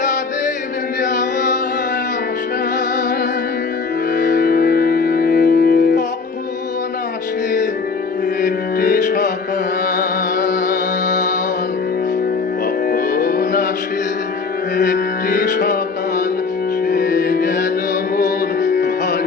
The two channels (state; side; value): quieter; right; 4.7 dB